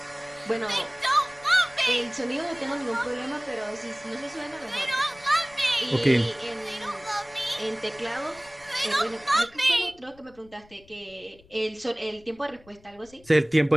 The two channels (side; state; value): left; noise; rumble, 26 dB below the sound